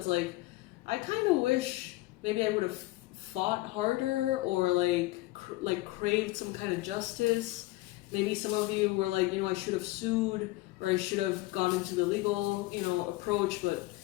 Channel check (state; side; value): quieter; right; 19.3 dB